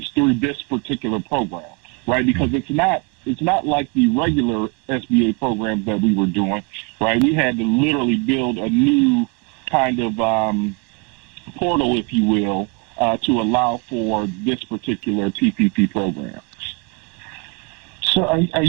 through this particular program, right? Because it's not like the regular SBA programs that we were doing, right? We had to literally build a new kind of portal, if you will, to allow for this particular PPP program. So are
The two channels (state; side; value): quieter; left; 31.0 dB